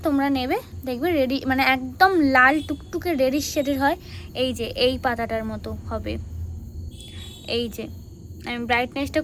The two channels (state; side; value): identical; both; correlation 1.00